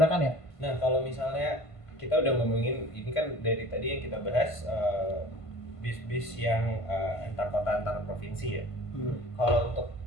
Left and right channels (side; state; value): right; late; 1.5 ms